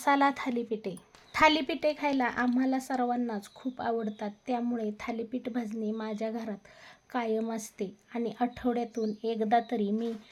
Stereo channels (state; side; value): identical; both; correlation 1.00